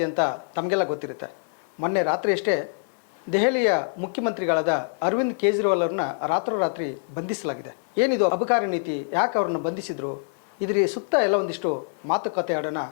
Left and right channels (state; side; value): silent; right; 56 dB below the other